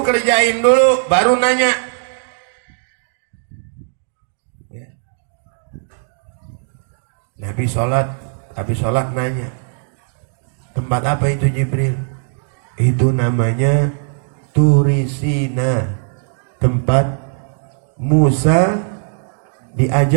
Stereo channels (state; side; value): silent; left; 67 dB below the other